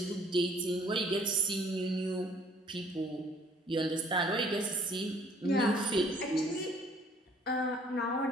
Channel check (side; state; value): both; normal; correlation 0.58